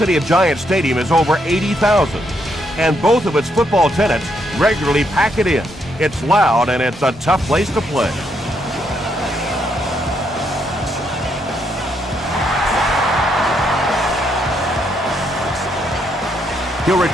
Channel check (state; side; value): normal; both; correlation 0.76